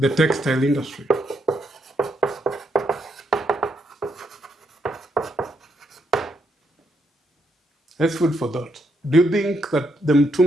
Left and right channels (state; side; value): normal; both; correlation 0.77